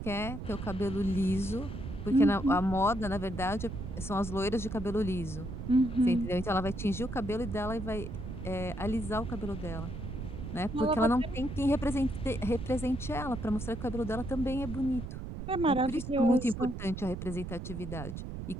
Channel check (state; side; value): noise; right; rumble, 7 dB below the sound